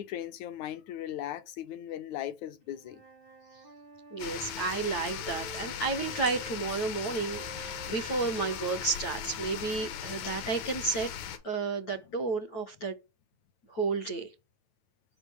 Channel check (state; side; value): late; right; 9.2 ms